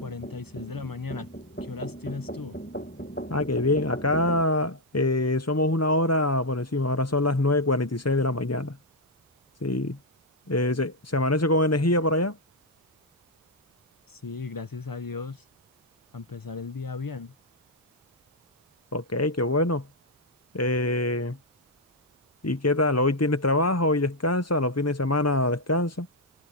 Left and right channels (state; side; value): normal; both; correlation 0.00